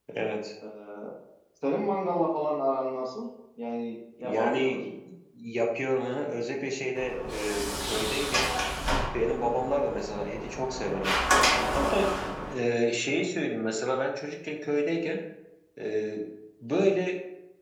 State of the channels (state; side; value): identical; both; correlation 1.00